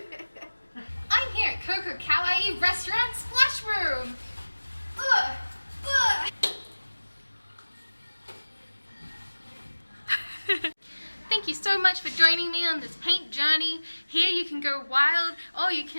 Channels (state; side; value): inverted; both; correlation -1.00